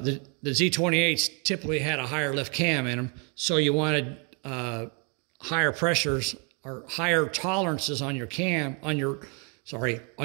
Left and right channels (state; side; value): quieter; left; 33.9 dB